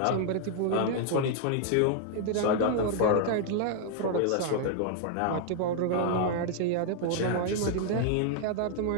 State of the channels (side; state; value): both; different; correlation 0.00